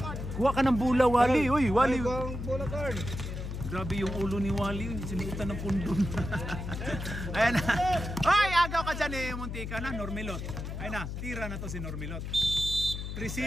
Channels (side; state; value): left; noise; hum, 6 dB below the sound